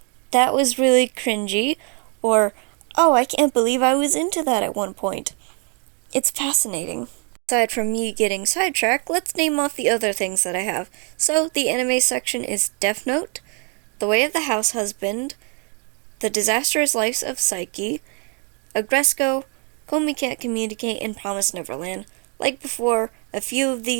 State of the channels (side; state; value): left; quieter; 37.8 dB